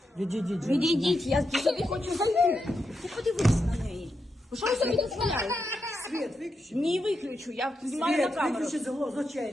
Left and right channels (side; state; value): both; normal; correlation 0.85